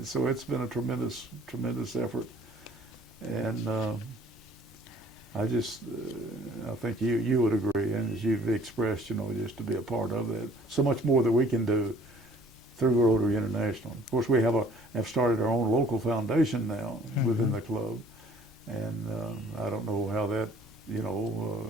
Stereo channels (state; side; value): normal; both; correlation 0.55